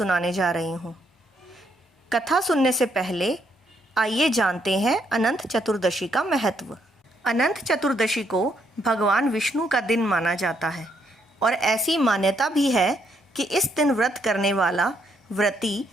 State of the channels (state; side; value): normal; both; correlation 0.74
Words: जा रही हूँ। कथा सुनने से पहले आइए जानते हैं अनंत चतुर्दशी का महत्व। अनंत चतुर्दशी को भगवान विष्णु का दिन माना जाता है और ऐसी मान्यता भी है कि इस दिन व्रत करने वाला व्रती